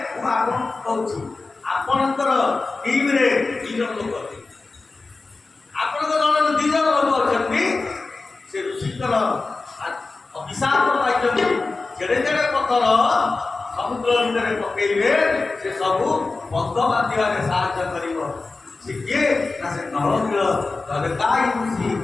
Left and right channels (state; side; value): quieter; right; 3.7 dB